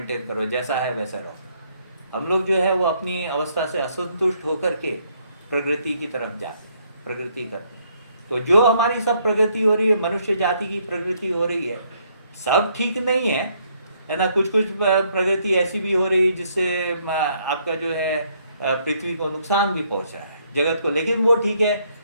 करो, जैसा है वैसा रहो। हम लोग जो है वो अपनी अवस्था से असंतुष्ट होकर के प्रगति की तरफ जाते हैं, प्रगति करते हैं। तो जो हमारी सब प्रगति हो रही है, मनुष्य जाति की प्रगति हो रही है, सब ठीक नहीं है ना। कुछ कुछ प्रगति ऐसी भी हो रही है जिससे आपका जो है पृथ्वी को नुकसान भी पहुंचा है, जगत को, लेकिन वो ठीक है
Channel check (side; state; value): both; inverted; correlation -0.69